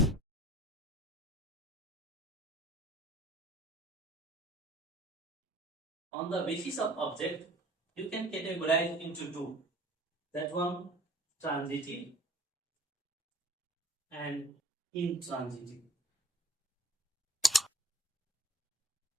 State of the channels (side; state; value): both; normal; correlation 0.50